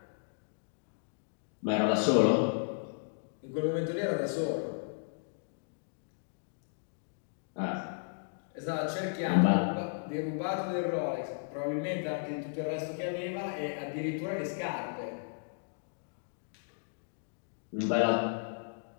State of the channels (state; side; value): silent; right; digital silence